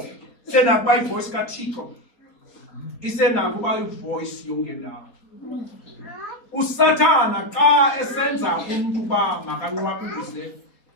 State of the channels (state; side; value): late; right; 4.2 ms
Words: senakwa ivoice kaThixo, isenako uba ivoice yongendawo. Usathana xa esenza umntu uba makanqwabuze